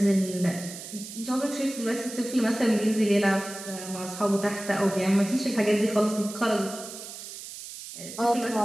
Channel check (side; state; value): right; noise; hiss, 12 dB below the sound